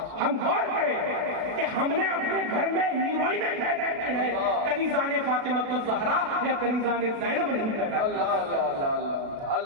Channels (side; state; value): left; late; 36 ms